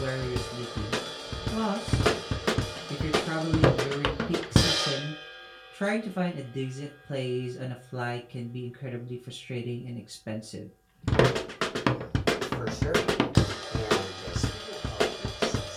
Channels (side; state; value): both; identical; correlation 1.00